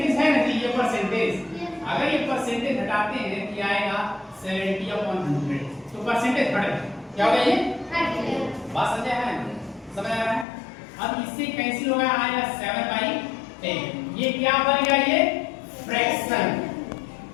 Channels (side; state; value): right; drops out; at 10.5 s